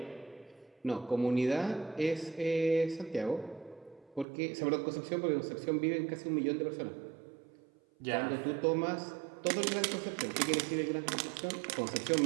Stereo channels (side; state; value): left; drops out; at 4.2 s